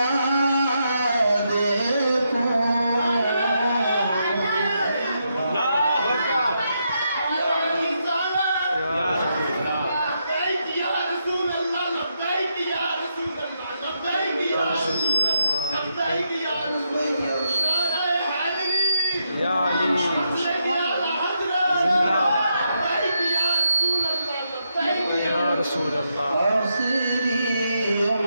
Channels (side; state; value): both; inverted; correlation -0.81